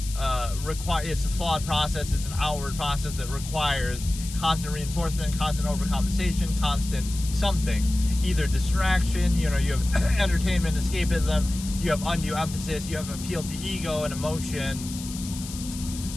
it's a flawed process. It's an outward process that requires constant reinforcement, constant overcompensation, constant something, either distraction. You have entertainment, escapism. You have undue emphasis. You have appeal to ego and emotion.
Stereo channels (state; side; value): noise; left; hiss, 12 dB below the sound